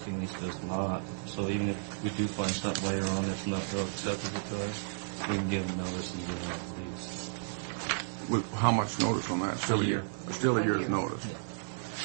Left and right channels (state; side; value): silent; left; digital silence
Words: lease does not. So even if we do find stuff later on that's not real acceptable to us, we can give them notice. With how much notice on that? Still A year. Still a 1 year's year. notice.